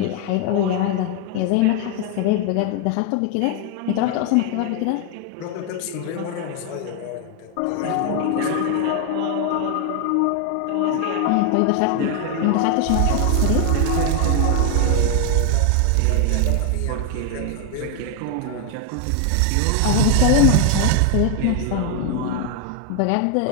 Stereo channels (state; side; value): different; both; correlation 0.00